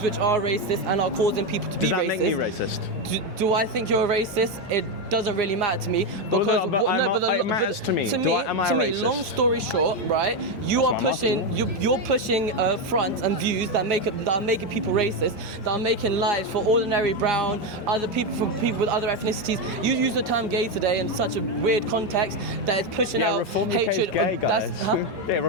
which are racist and are causing people to be racist. Does that make me racist? Do I think you're a racist? It doesn't really matter to me because it matters to me. Am I a racist? Long story short, right? You're pushing fronts and views that are making people racist, that are making lives for ordinary brown, other people, for people with other ethnicities. You use the term gay today in such a weird context that is pushing out Reform hatred. UK is gay, guys. Yeah,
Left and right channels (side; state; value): both; normal; correlation 0.08